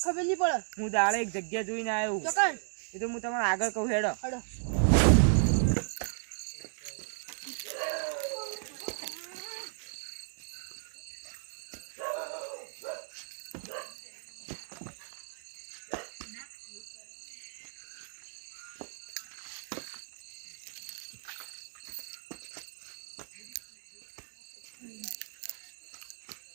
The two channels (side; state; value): left; silent; digital silence